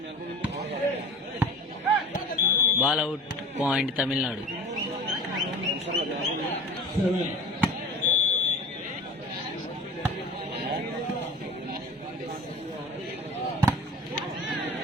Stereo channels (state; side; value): normal; both; correlation 0.38